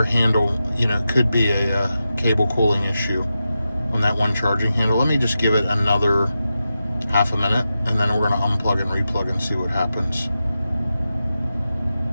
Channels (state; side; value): inverted; both; correlation -0.91